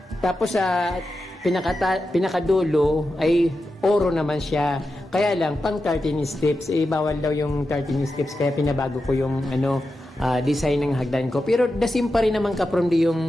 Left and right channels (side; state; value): both; normal; correlation 0.90